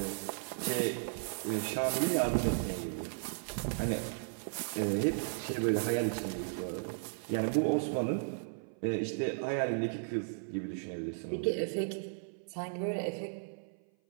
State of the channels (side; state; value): left; silent; 54 dB below the other